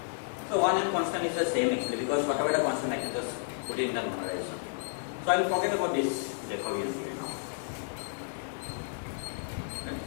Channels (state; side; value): silent; right; 56 dB below the other